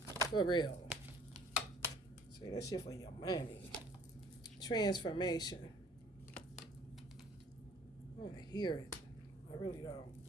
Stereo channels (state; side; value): normal; both; correlation 0.55